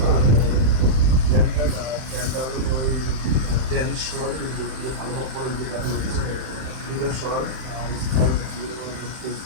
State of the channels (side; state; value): left; late; 38 ms